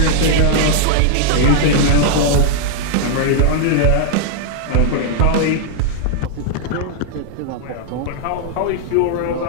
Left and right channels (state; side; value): different; both; correlation -0.01